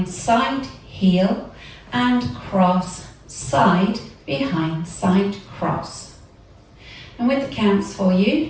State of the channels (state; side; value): identical; both; correlation 1.00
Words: side, heel, and cross, side, behind, side, cross. And with the counts for you,